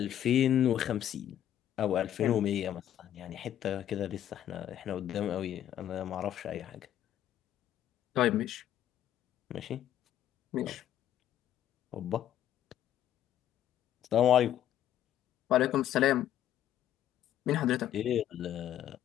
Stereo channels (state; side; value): quieter; right; 11.2 dB